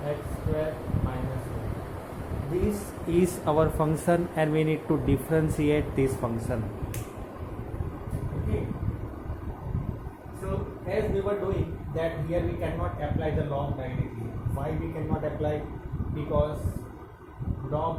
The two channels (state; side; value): identical; both; correlation 1.00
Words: x square minus 1. This is our function and we need to differentiate this function. Okay. So as we were doing that, here we cannot apply the log directly. Why we cannot apply? Because